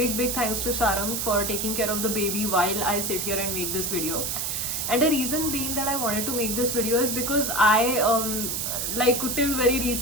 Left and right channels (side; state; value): right; noise; hiss, 1 dB below the sound